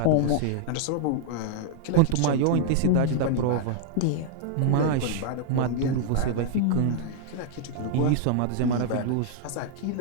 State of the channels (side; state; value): both; different; correlation -0.01